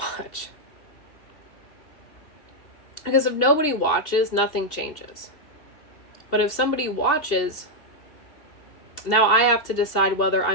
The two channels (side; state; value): right; late; 2.7 ms